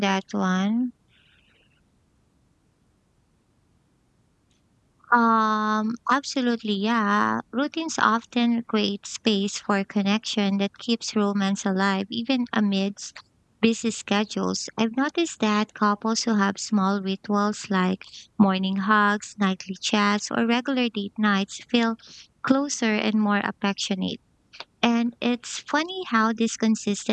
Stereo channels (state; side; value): identical; both; correlation 1.00